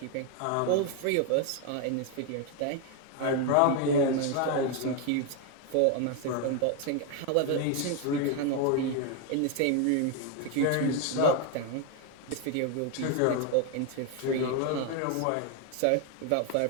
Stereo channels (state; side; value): different; both; correlation 0.01